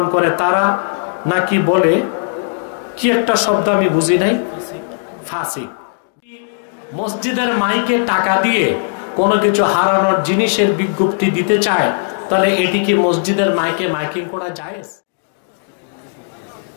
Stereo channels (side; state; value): right; silent; digital silence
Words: করে তারা নাকি বলে কি একটা শব্দ আমি বুঝি নাই, ফাসিক। মসজিদের মাইকে টাকা দিয়ে কোনো কিছু হারানোর জিনিসের বিজ্ঞপ্তি দিতে চায়, তাহলে এটি কি মসজিদের মাইকে মাইকিং করা জায়েজ?